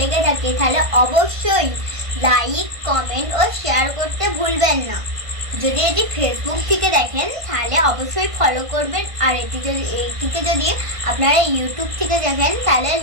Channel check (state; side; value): late; left; 1.5 ms